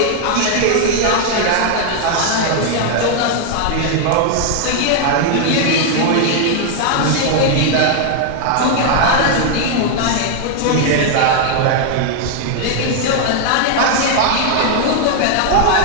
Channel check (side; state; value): both; different; correlation 0.00